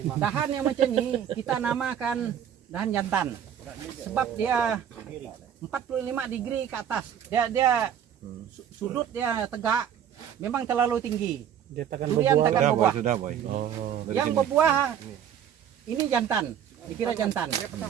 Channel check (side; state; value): left; quieter; 9.3 dB